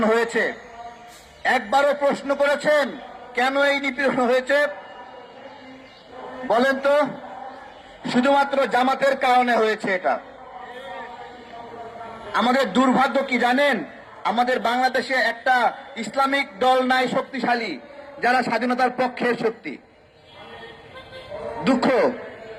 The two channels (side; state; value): both; identical; correlation 1.00